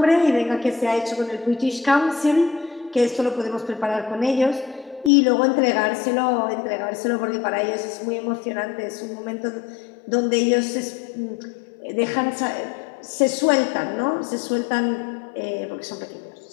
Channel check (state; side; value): drops out; right; at 5.1 s